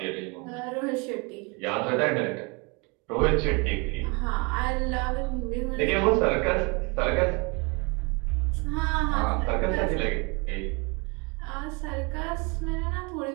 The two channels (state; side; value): quieter; left; 30.5 dB